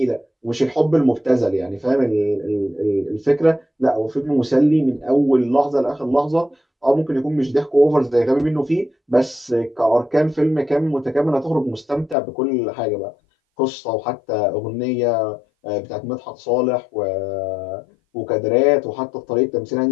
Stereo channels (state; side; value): drops out; right; at 12.2 s